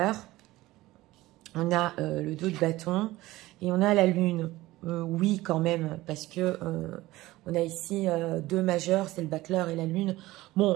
on a le 2 de bâton et on a la lune. Oui, quand même, parce que on a ici 2 majeurs, c'est le battleur et la lune.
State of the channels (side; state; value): left; quieter; 18.0 dB